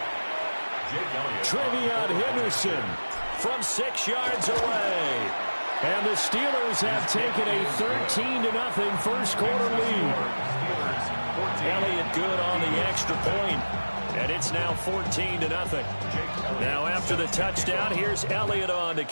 Trevion Henderson from 6 yards away. And the Steelers have taken a 13-0 first quarter lead. Elliott good on the extra point. And it's now 14-0. Now after the touchdown, here's Elliott on to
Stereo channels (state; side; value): inverted; both; correlation -1.00